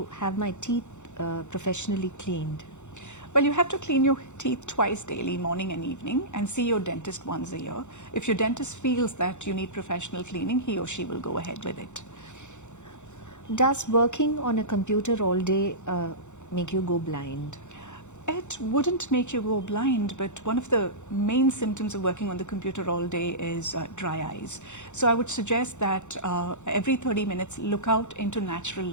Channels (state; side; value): late; right; 0.84 ms